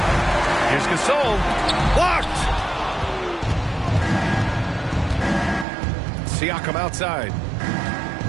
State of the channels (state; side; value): drops out; left; at 5.7 s